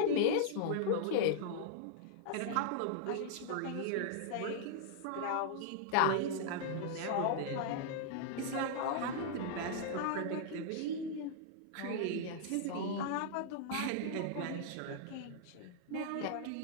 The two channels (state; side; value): different; both; correlation -0.01